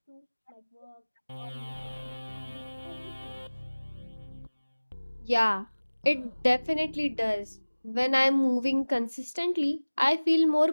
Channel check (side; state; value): both; inverted; correlation -1.00